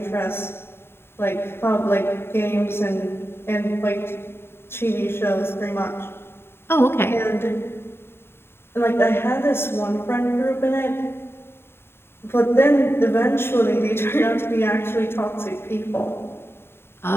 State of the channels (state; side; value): late; right; 0.11 ms